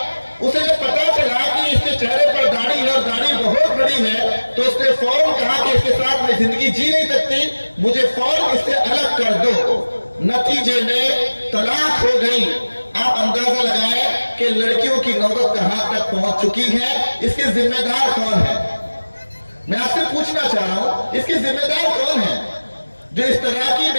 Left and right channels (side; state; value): both; inverted; correlation -1.00